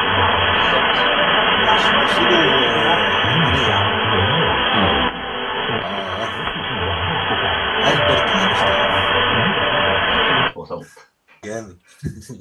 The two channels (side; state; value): both; identical; correlation 1.00